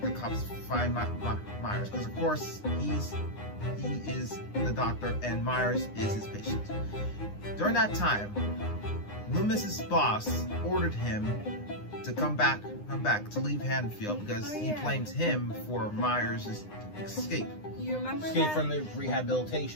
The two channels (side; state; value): right; late; 9.8 ms